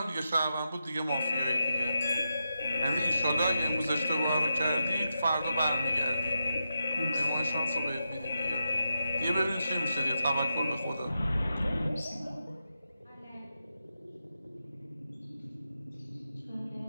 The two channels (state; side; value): inverted; both; correlation -0.87